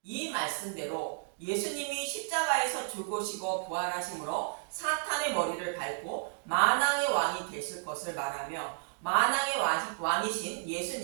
이 말씀대로 예수님이 십자가에서 죽으시고 부활하심으로 사탄의 머리를 밟고 만왕의 왕이 되실 것을 말하며 만왕의 왕이신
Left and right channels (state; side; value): silent; left; digital silence